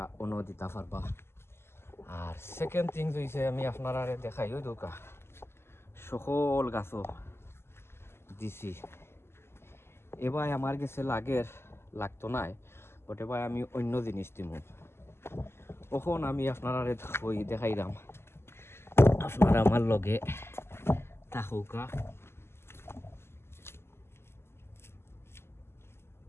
অন্য দিতে পারবা। আর সেকেন্ড থিংস হয়েছে আমি আপনারা দেখাই, ওই দৌকা সকল গাছও দিছি। এবার আমার গেছে লাগতো নাই, বাট এবার আমি অন্য জিনিস দিব। কখন আমি আপনারা দেখাইলাম, আপনারা আমার লগে থাকুকা।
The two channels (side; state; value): right; late; 0.12 ms